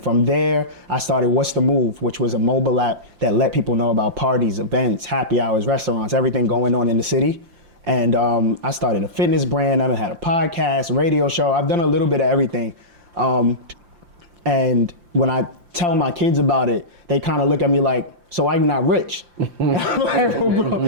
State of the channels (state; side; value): late; left; 5.7 ms